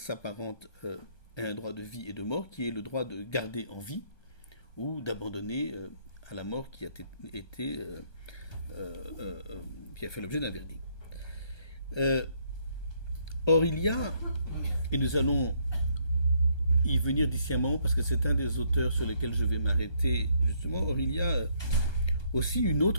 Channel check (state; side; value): late; right; 1.2 ms